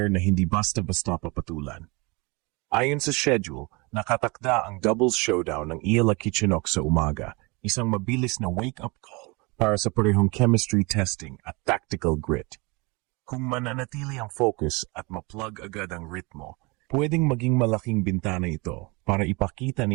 na hindi basta-basta papatulan. Ayon sa schedule, nakatakda ang doubles showdown ng Iela Kichenok sa umaga, isang mabilis na wake-up call para sa parehong chemistry testing at tactical grit. Kung mananatili ang focus at ma-plug agad ang ritmo, pwedeng maging malaking bintana ito para ipakita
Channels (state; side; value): quieter; left; 27.1 dB